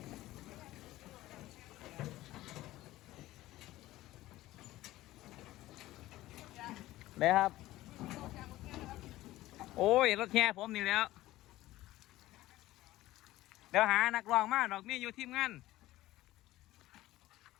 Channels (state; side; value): quieter; right; 16.4 dB